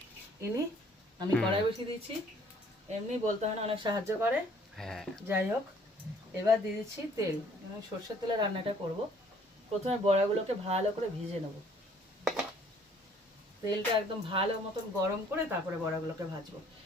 ইনি, আমি কড়াই বসিয়ে দিচ্ছি। এমনি বলতে হয় না, অনেক সাহায্য করে। যাই হোক, এবার দিয়ে দিচ্ছি তেল, আমি সর্ষের তেলে রান্নাটা করব। প্রথমে বড়াগুলোকে ভালো করে ভিজে নেব, তেলটা একদম ভালো মতন গরম করে তারপরে বড়াগুলোকে ভাজবো।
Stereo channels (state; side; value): normal; both; correlation 0.59